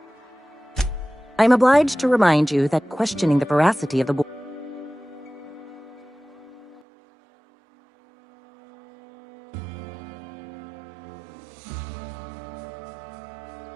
I am obliged to remind you that questioning the veracity of the board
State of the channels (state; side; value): drops out; left; at 6.9 s